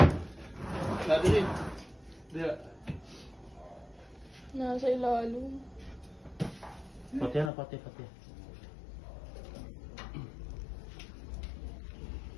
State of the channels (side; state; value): right; drops out; at 7.5 s